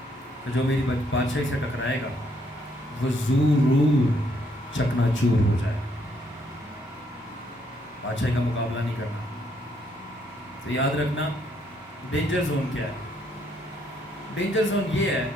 کہ جو میری بادشاہی سے ٹکرائے گا وہ ضرور چکنا چور ہو جائے. بادشاہی کا مقابلہ نہیں کرنا. تو یاد رکھنا ڈینجر زون کیا ہے. ڈینجر زون یہ ہے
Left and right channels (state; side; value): normal; both; correlation 0.71